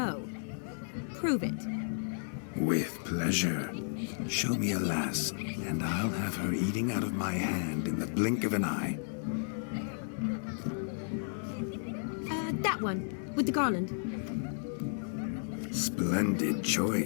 Prove it. With pleasure. Show me a lass, and I'll have her eating out of my hand in the blink of an eye. That one, with the garland. Splendid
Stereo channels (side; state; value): right; silent; 56 dB below the other